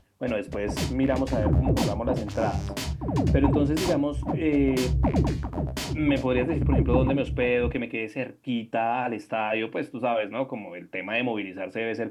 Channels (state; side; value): identical; both; correlation 1.00